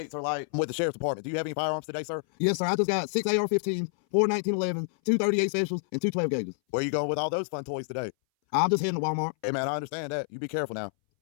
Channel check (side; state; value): right; silent; 59 dB below the other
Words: are like with the sheriff's department. Do you have any firearms today, sir? Yes, sir. I just got 6 AR-15s, 4 1911s, 2 38 specials, and 2 12 gauges. Where you going with all those fun toys today? I'm just heading to Walmart. Hey, man, I understand that. You be careful now.